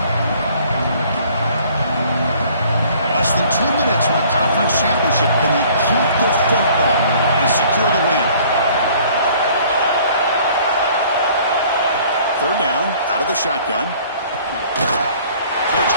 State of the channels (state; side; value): inverted; both; correlation -0.55